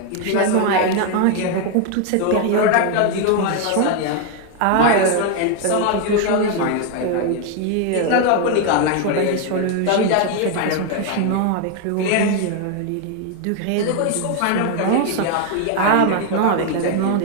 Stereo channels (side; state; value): both; different; correlation 0.01